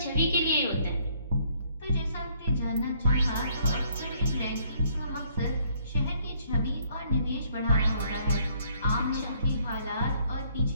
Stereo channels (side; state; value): both; inverted; correlation -0.66